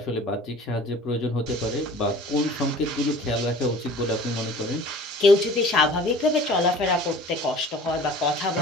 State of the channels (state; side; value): normal; both; correlation 0.46